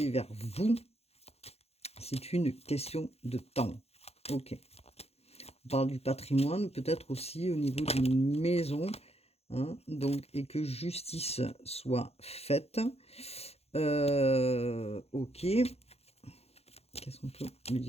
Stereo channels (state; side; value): late; right; 0.30 ms